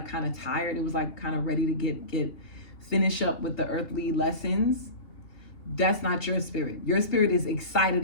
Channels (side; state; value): right; late; 2.9 ms